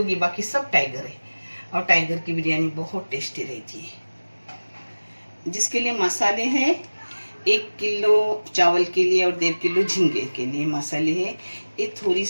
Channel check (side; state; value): both; inverted; correlation -1.00